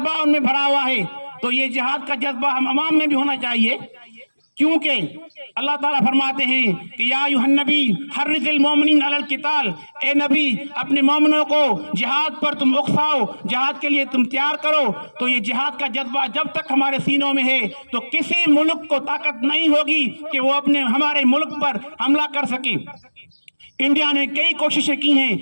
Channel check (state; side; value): inverted; both; correlation -1.00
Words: ان میں بھرا ہوا ہے۔ تو یہ جہاد کا جذبہ ہم عوام میں بھی ہونا چاہیے، کیونکہ اللہ تعالیٰ فرماتے ہیں کہ یا ایھا النبی حرض المؤمنین علی القتال، اے نبی اپنے مومنوں کو جہاد پر تم اکساؤ، جہاد کے لیے تم تیار کرو۔ تو یہ جہاد کا جذبہ جب تک ہمارے سینوں میں ہے تو کسی ملک کو طاقت نہیں ہوگی کہ وہ ہمارے ملک پر حملہ کر سکے۔ انڈیا نے کئی کوششیں کی ہیں